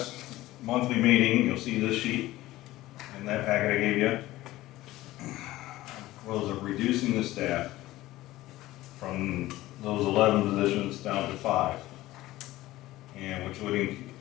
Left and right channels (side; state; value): right; quieter; 16.8 dB